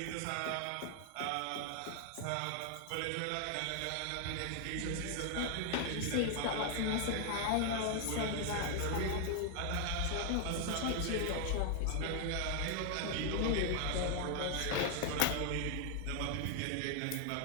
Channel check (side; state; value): both; different; correlation 0.00